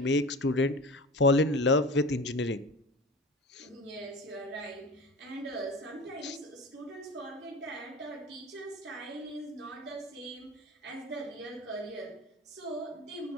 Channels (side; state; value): both; normal; correlation 0.34